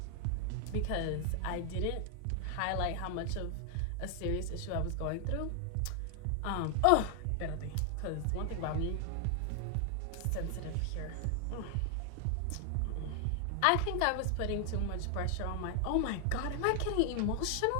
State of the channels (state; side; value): different; both; correlation 0.00